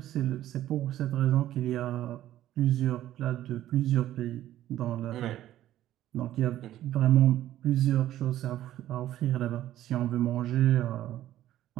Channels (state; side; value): quieter; left; 13.2 dB